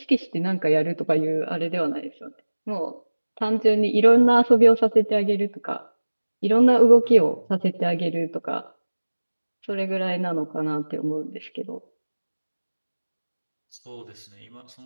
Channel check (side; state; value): both; inverted; correlation -1.00